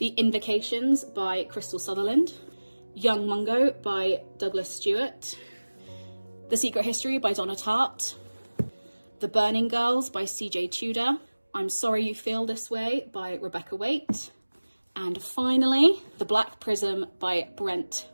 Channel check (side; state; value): both; inverted; correlation -1.00